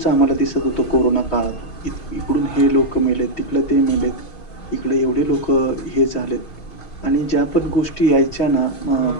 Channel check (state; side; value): late; right; 6.3 ms